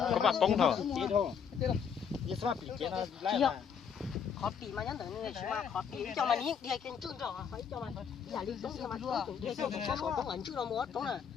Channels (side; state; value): right; quieter; 7.2 dB